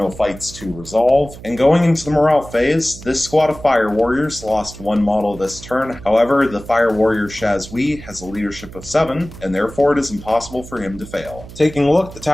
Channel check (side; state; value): right; noise; hum, 16 dB below the sound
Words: fights to resolve. And going into the morale phase, this squad of Fire Warriors lost 1 model this turn. However, the Fire Warrior Shazwi has a leadership of 7, and therefore it is impossible for him to fail. Taking a look at the